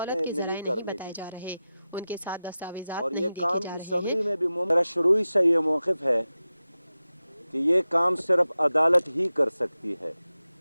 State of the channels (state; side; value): inverted; both; correlation -0.94